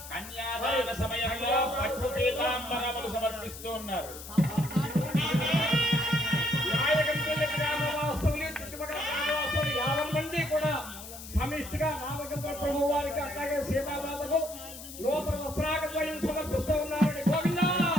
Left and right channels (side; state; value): left; noise; hiss, 13 dB below the sound